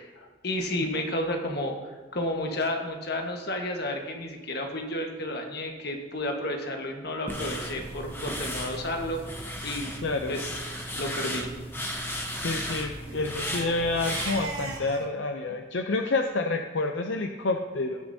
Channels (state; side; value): normal; both; correlation 0.10